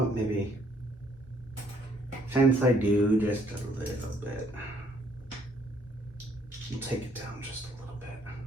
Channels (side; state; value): both; normal; correlation 0.66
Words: Maybe since I do just a little bit, we'll take it down just a little bit.